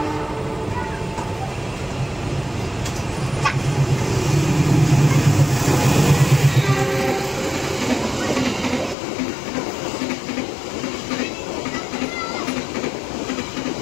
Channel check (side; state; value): right; drops out; at 9.0 s